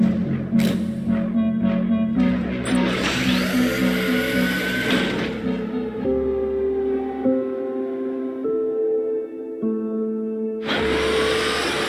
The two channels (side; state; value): both; identical; correlation 1.00